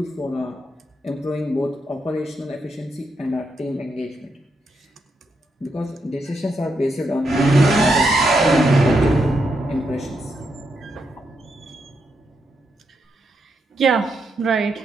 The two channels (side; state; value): both; normal; correlation 0.82